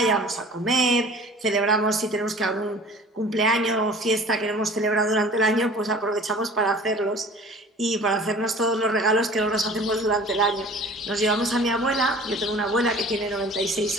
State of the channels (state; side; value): normal; both; correlation 0.45